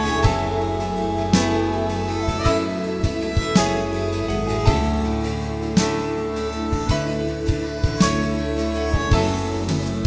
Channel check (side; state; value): both; identical; correlation 1.00